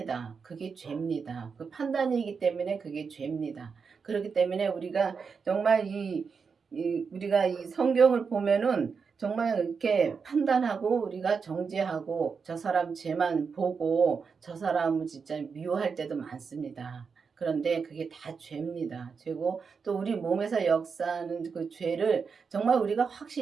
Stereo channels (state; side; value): quieter; left; 5.6 dB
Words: 그게 죄입니다. 그 판단이기 때문에 그게 죄입니다. 그렇기 때문에 우리가 정말 우리가 이 성경을 보면은 정말 이렇게 판단하고 우리가 정죄하고 저 사람 죄만 보고 저 사람을 진짜 미워할 때도 많습니다. 그런데 그게 다 죄입니다. 죄고 또 우리 몸에서 역사하는 그 죄를 정말 우리가